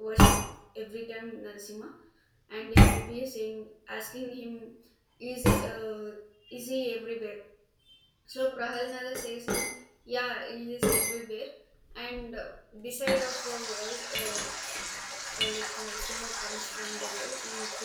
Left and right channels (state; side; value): identical; both; correlation 1.00